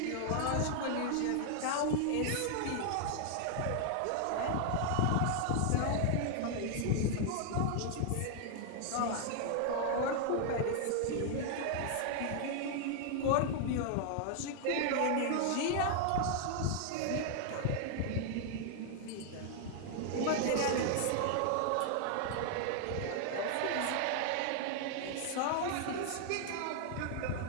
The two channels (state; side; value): different; both; correlation 0.00